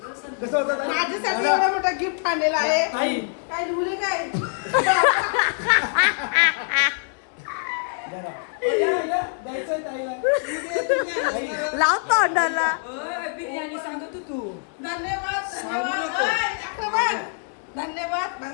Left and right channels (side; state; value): right; silent; 60 dB below the other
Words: माझ्यासाठी एवढा मोठा गिफ्ट आणलेला आहे. काय लिहले काय लाव तोंडाला. बिर्याणी सांगत तू. धन्यवाद धन्यवाद धन्यवाद